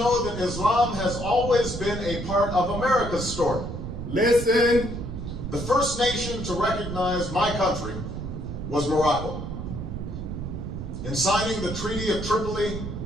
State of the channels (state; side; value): noise; right; rumble, 6 dB below the sound